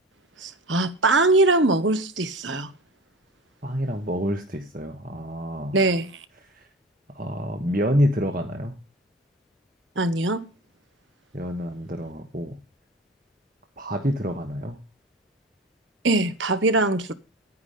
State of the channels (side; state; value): both; normal; correlation 0.36